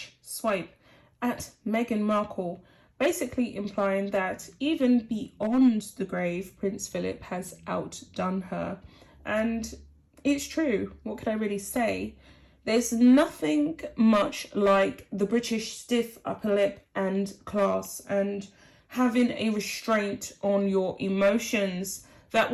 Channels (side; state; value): both; identical; correlation 1.00